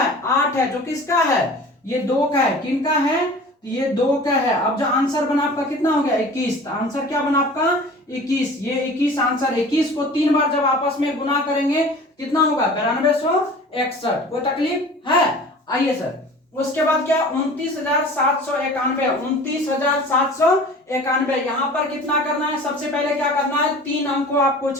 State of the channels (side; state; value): both; normal; correlation 0.42